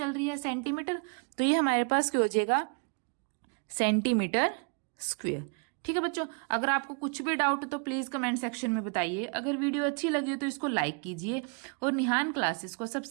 रही है सेंटीमीटर, तो ये हमारे पास क्या हो जाएगा सेंटीमीटर स्क्वायर। ठीक है बच्चों, अगर आपको कुछ भी डाउट है तो प्लीज कमेंट सेक्शन में बताइए। अगर वीडियो अच्छी लगी हो तो इसको लाइक कीजिए और निहान क्लासेस को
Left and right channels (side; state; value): left; quieter; 38.1 dB